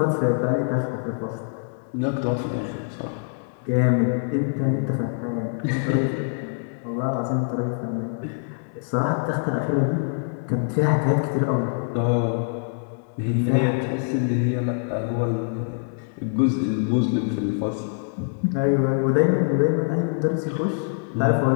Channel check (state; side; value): silent; right; 62 dB below the other